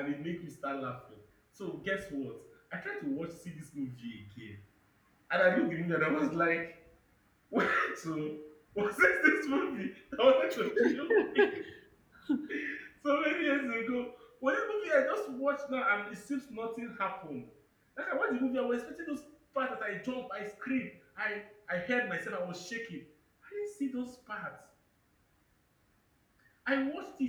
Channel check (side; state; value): both; identical; correlation 1.00